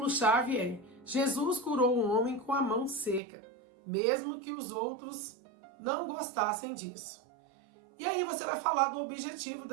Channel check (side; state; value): left; drops out; at 3.2 s